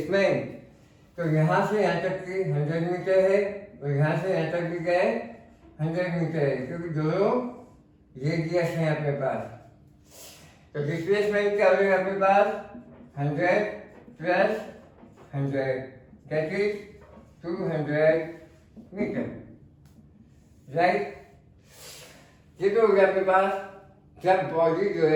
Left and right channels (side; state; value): both; identical; correlation 1.00